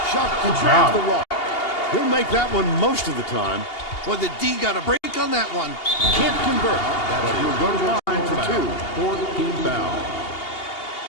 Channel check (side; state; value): right; late; 2.8 ms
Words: Chavez Good grabs job. the rock. He'll make that one most of the time. Boy, the D got a break on that one. Can't convert, but he'll go to the line for two. Fourth team foul.